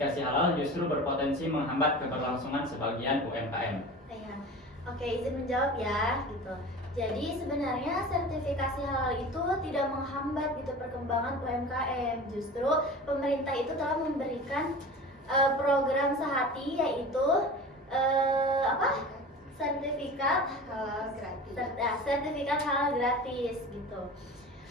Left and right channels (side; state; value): both; normal; correlation 0.35